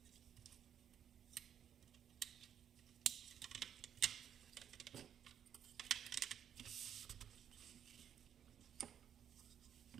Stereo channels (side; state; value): left; quieter; 9.1 dB